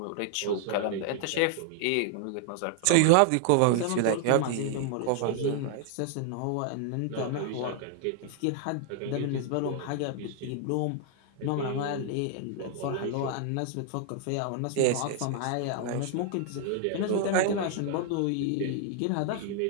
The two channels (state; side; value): different; both; correlation 0.00